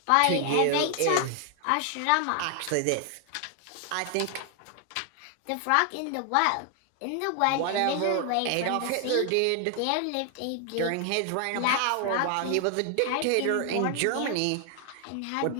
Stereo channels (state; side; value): different; both; correlation 0.00